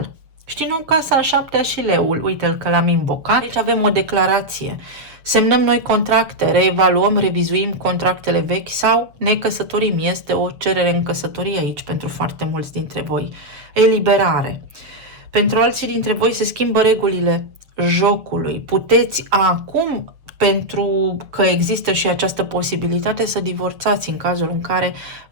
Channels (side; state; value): left; late; 7.2 ms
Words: Știi, nu, casa a șaptea și leul, uite-l că l-am invocat. Aici avem o declarație. Semnăm noi contracte, reevaluăm, revizuim contractele vechi sau ne căsătorim. Este o cerere în căsătorie aici pentru foarte mulți dintre voi. Eliberare. Pentru alții dintre voi se schimbă regulile jocului. Puteți acum, pentru că există și această posibilitate, să divorțați în cazul în care